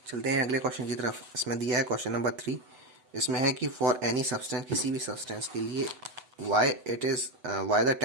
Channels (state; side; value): late; left; 8.0 ms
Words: चलते हैं अगले क्वेश्चन की तरफ। इसमें दिया है क्वेश्चन नंबर 3। इसमें है कि फॉर एनी सब्सटेंस, किसी भी सब्सटेंस के लिए, why the